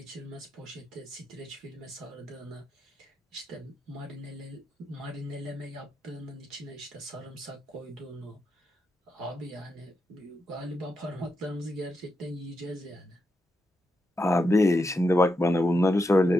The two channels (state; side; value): normal; both; correlation 0.85